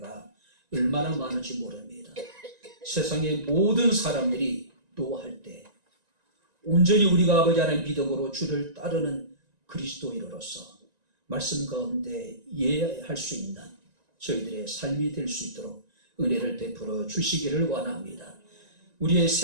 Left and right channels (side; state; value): left; late; 1.9 ms